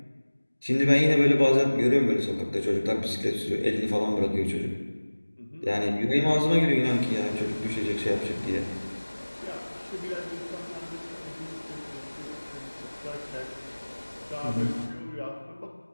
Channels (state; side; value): inverted; both; correlation -1.00